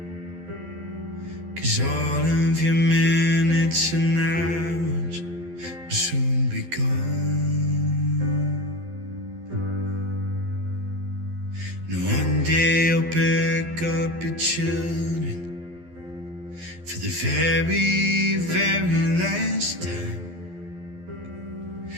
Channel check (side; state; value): left; late; 12 ms